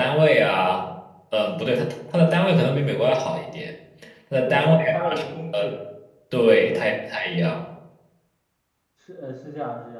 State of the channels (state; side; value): identical; both; correlation 1.00